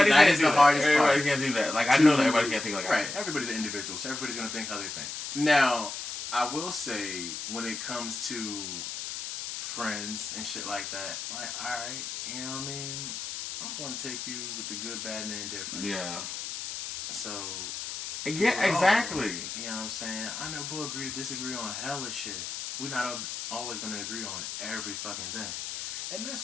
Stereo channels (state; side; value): noise; left; hiss, 6 dB below the sound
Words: that is the hardest part. Everybody can't do that. Like, I know that everybody can't think like I think. Right. Everybody's an individual, so everybody's going to think how they think. Now, I will say, when it comes to friends and shit like that, like, alright, you know what I mean? I'm going to take you with the good, bad, and the indifferent. Yeah. So... Yeah, exactly. You know what I'm saying? I know we'll agree to disagree on hella shit. We're not always going to agree on every fucking thing. And